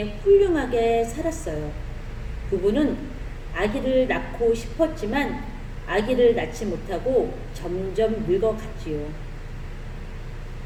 훌륭하게 살았어요. 부부는 아기를 낳고 싶었지만 아기를 낳지 못하고 점점 늙어갔지요.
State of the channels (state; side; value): identical; both; correlation 1.00